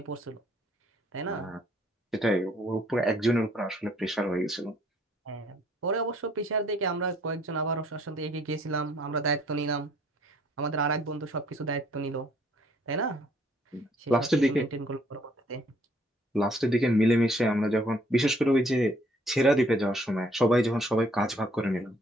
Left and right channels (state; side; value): normal; both; correlation 0.63